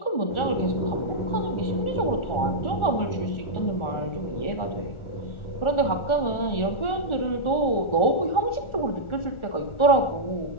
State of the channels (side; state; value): right; late; 1.4 ms